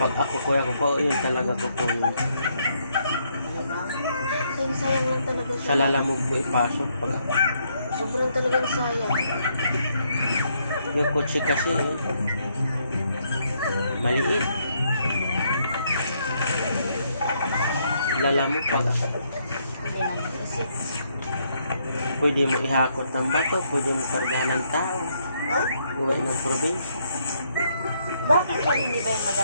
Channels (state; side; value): inverted; both; correlation -0.73